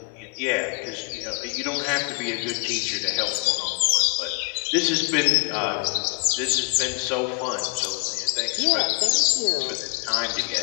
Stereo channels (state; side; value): quieter; right; 36.9 dB